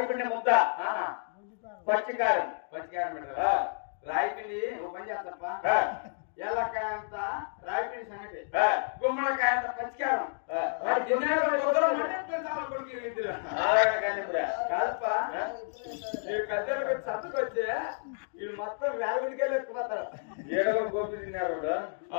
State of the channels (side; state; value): right; silent; digital silence